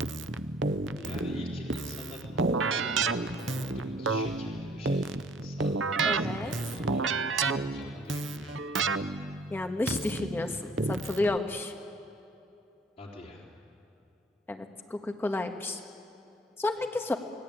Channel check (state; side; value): normal; both; correlation 0.56